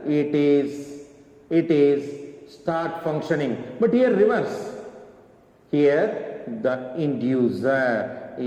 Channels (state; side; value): identical; both; correlation 1.00